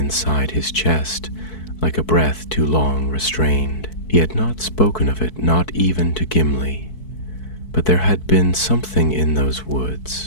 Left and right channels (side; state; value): right; late; 4.6 ms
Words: his chest, like a breath too long restrained. He had not spoken of it, not even to Gimli, But there had been something in those